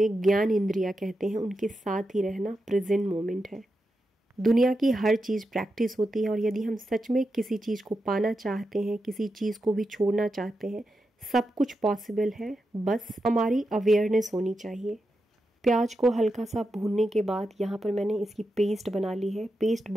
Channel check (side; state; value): both; normal; correlation 0.88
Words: ज्ञान इंद्रियां कहते हैं, उनके साथ ही रहना प्रेजेंट मोमेंट है। दुनिया की हर चीज़ प्रैक्टिस होती है, और यदि हम सच में किसी चीज़ को पाना चाहते हैं, किसी चीज़ को भी छोड़ना चाहते हैं, सब कुछ पॉसिबल है, बस हमारी अवेयरनेस होनी चाहिए। प्याज को हल्का सा भूनने के बाद यहाँ पर मैंने इसकी पेस्ट बना ली है। पेस्ट